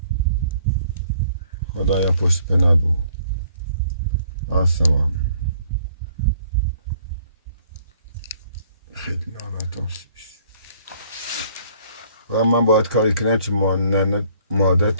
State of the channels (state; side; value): inverted; both; correlation -0.60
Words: خدایا پشت پناه بود آسمان. خیلی ناراحتم شدش. و من باید کاری کنم که